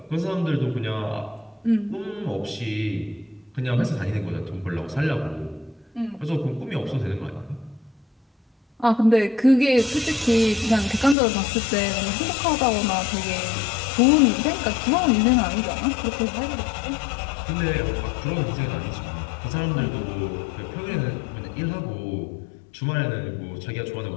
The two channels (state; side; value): drops out; right; at 11.2 s